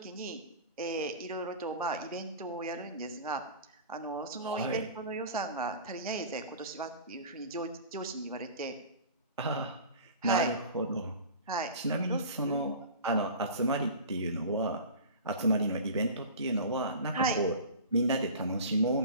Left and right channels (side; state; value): both; inverted; correlation -0.37